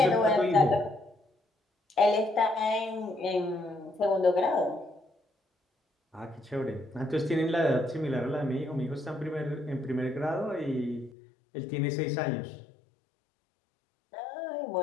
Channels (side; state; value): right; drops out; at 11.1 s